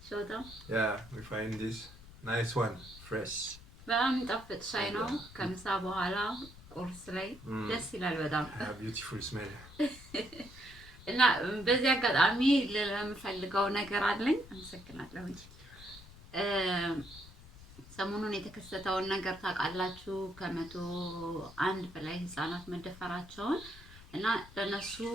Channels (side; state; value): left; noise; rumble, 19 dB below the sound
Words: Show them. Yeah, we find this nice one, fresh. በጣም የሚጣፍጥ ሻይ ነው ከምሳ በኋላ ቁርስ ላይ ደስ ይላል በጣም beautiful smell. እና በዚህ አጋጣሚ ለምፈልገው ነገር አለኝ አመሰግናለሁ ሰሞኑን የተከሰተውን ነገር ታውቃላችሁ ከ101 በላይ ህፃናት መደፈራቸውን እና ለነሱ